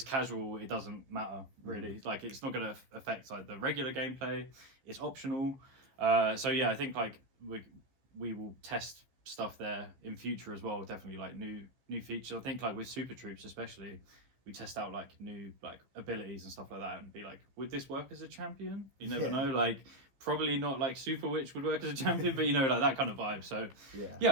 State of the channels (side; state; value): left; late; 15 ms